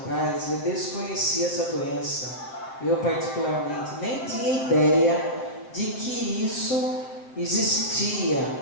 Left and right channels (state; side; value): late; right; 7.4 ms